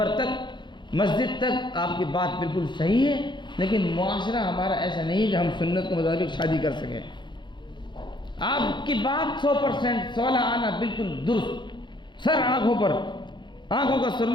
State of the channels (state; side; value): late; right; 0.22 ms